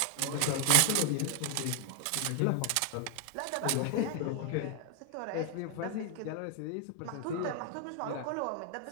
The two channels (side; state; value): both; different; correlation 0.00